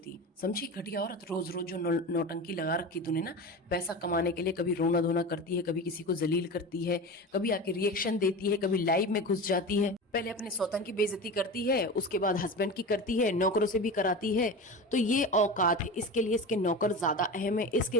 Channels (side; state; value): both; normal; correlation 0.28